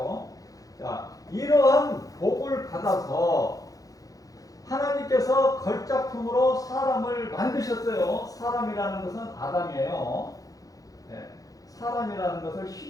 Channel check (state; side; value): late; right; 0.17 ms